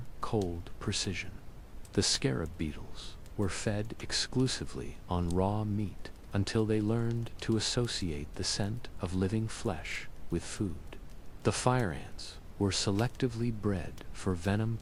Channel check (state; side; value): identical; both; correlation 1.00